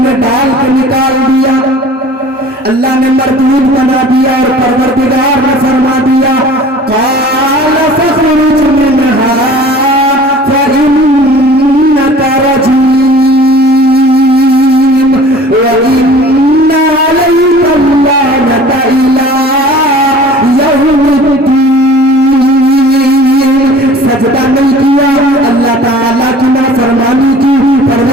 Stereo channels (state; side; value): normal; both; correlation 0.46